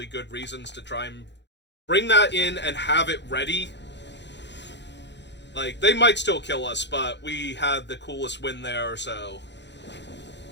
good reasons to try and bring that in and have it ready. Like, they might still kill us, but we had the coolest win there, so...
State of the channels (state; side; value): late; right; 0.51 ms